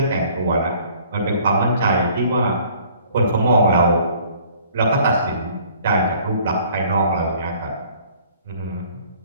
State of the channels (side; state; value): both; inverted; correlation -0.56